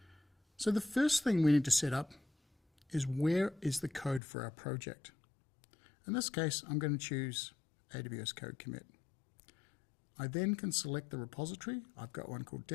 So the first thing we need to set up is where is the code for our project. In this case, I'm going to choose AWS Code Commit. I then can select the repository. I've got one called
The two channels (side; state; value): right; drops out; at 4.2 s